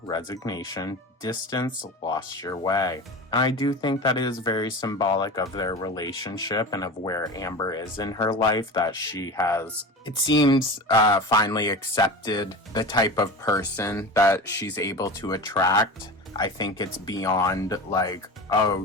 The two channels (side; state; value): both; normal; correlation 0.30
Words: resignation, distance, lost your way. And I do think that is very symbolic of their relationship and of where Amber is in her life, that she has, it seems, finally accepted the type of person that she's able to attract. I think it's beyond like, oh,